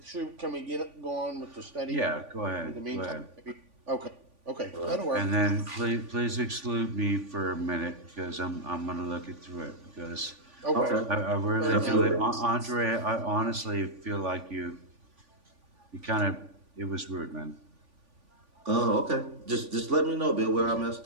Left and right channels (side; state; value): left; late; 3.5 ms